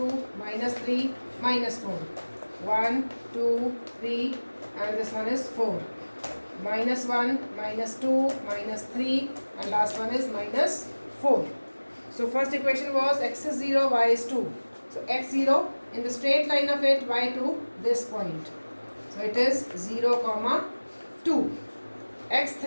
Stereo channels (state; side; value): inverted; both; correlation -1.00